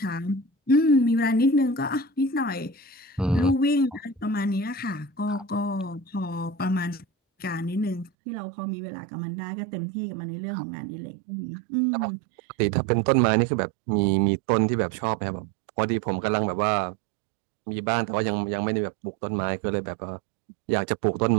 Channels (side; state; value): left; drops out; at 8.1 s